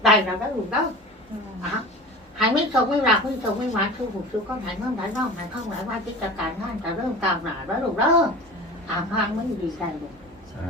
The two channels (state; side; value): normal; both; correlation 0.35